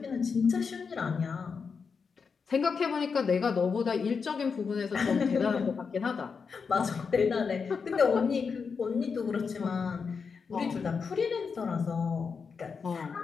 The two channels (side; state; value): right; quieter; 5.5 dB